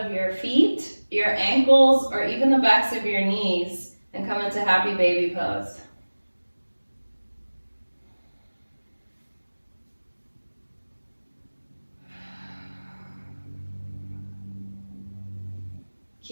your feet, your ankles, or even the backs of your knees and come into happy baby pose.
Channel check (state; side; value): inverted; both; correlation -1.00